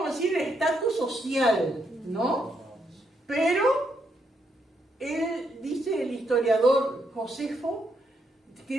a decir, el estatus social, ¿no? Pero él, dice el historiador Josefo, que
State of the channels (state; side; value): normal; both; correlation 0.77